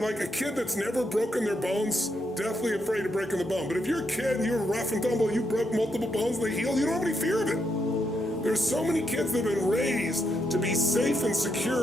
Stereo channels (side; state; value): both; normal; correlation 0.79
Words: a kid that's never broken their bones, deathly afraid of breaking the bone. But if you're a kid and you're rough and tumble, you broke multiple bones, they healed, you don't have any fear of it. There's so many kids that have been raised to be safe and